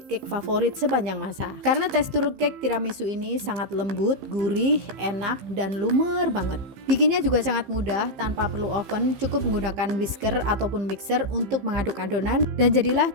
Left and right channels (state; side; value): late; left; 15 ms